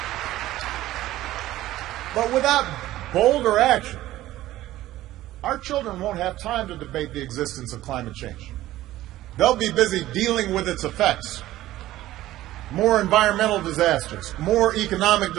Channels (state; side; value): quieter; left; 15.2 dB